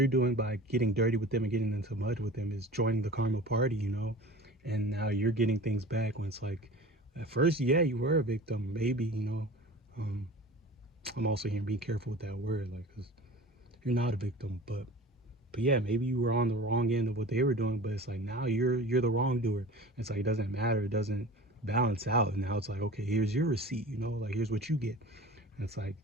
doing by getting dirty with them and getting into mud with them is joining the karma party, you know. And now you're getting things back, when it's like, at first, yeah, you were a victim, maybe, you know. um I'm also here being careful with that word, like, because you're not a victim, but yeah, maybe you were on the wrong end of what they were doing, but it's like now you're the wrongdoer. It's like, it doesn't matter, it doesn't balance out. And now it's like, okay, here's your receipt, you know, like, here's what you get. And it's like,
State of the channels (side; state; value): both; normal; correlation 0.39